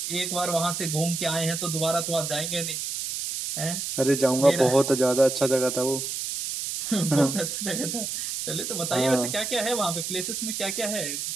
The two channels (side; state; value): right; noise; hiss, 4 dB below the sound